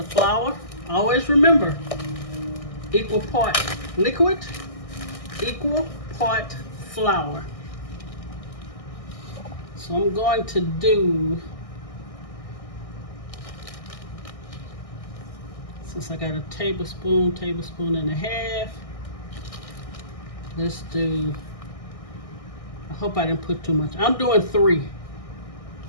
flour. Always remember, equal part liquid, equal part flour. So I'm going to do, since I got a tablespoon and a half, let's do, I hope I didn't put too much. I'm doing 3.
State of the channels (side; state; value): right; late; 1.6 ms